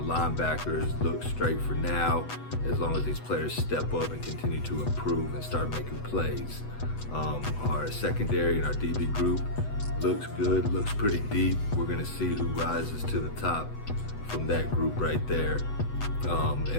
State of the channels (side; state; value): right; late; 8.0 ms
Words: look straight for now, as long as these players step up and continue to improve and start making plays. Our secondary and our DB group looks good, looks pretty deep. We're gonna see who rises to the top from that group right there.